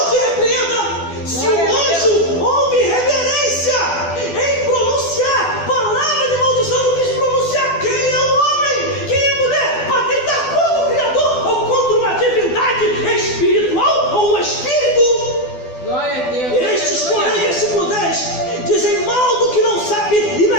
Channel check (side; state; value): right; late; 12 ms